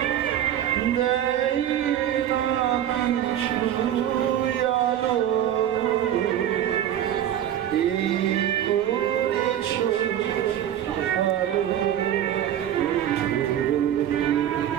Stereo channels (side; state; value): left; quieter; 10.9 dB